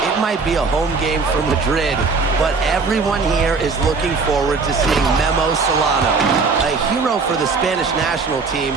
might be a home game for Madrid, but everyone here is looking forward to seeing Memo Solano, a hero for the Spanish national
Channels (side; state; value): left; quieter; 4.4 dB